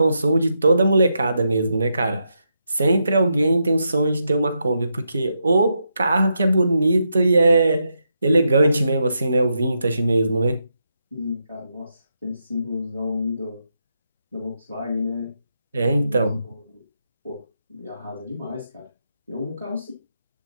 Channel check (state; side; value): inverted; both; correlation -0.83